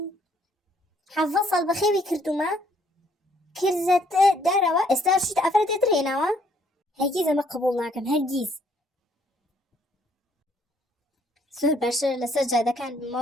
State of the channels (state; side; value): normal; both; correlation 0.66